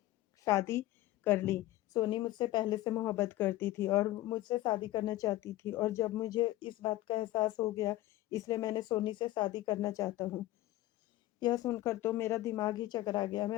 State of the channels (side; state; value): right; quieter; 16.1 dB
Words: शादी कर ली। सोनी मुझसे पहले से मोहब्बत करती थी और मुझसे शादी करना चाहती थी और जब मुझे इस बात का एहसास हो गया, इसलिए मैंने सोनी से शादी करना चाहता हूँ।" यह सुनकर तो मेरा दिमाग ही चकरा गया।